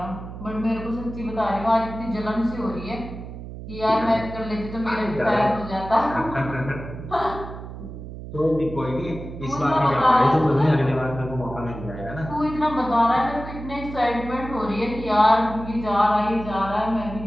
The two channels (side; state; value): right; noise; hum, 11 dB below the sound